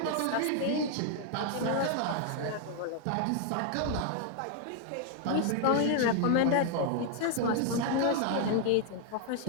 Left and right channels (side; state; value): both; different; correlation 0.00